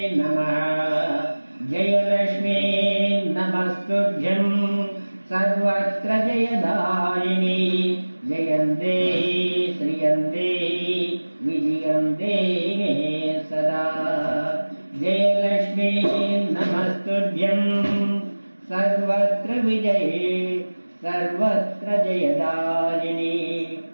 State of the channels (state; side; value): inverted; both; correlation -1.00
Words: नमः जयलक्ष्मी नमस्तुभ्यं सर्वत्र जयदायिनी जयन्ते श्रियन्ते विजयन्ते मे सदा जयलक्ष्मी नमस्तुभ्यं सर्वत्र विजये सर्वत्र जयदायिनी